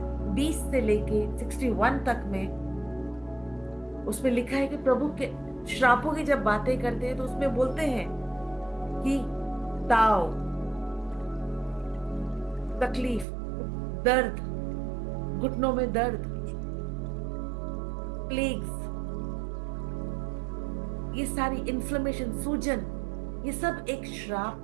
20 से लेके 61 तक में उसमें लिखा है कि प्रभु के श्रापों की जब बातें करते हैं तो उसमें बोलते हैं कि ताव, तकलीफ, दर्द, घुटनों में दर्द, प्लेग्स, ये सारी इन्फ्लेमेशन, सूजन, ये सब एक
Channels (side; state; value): left; drops out; at 13.2 s